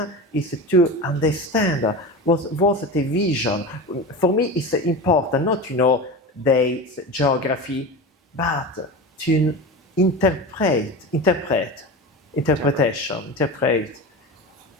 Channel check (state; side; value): normal; both; correlation 0.27